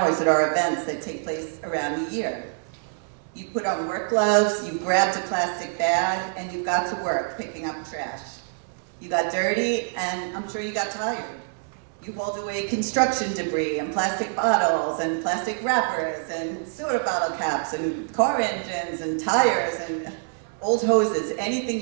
at our events that take place around the year. You put on work gloves, you grabbed a plastic bag, and you've got to work picking up trash. You got dirty, and I'm sure you got tired. You hauled away construction debris and plastic bottles and plastic wrappers and soda bottle caps and car engines and tires and old hoses, anything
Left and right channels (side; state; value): left; silent; 61 dB below the other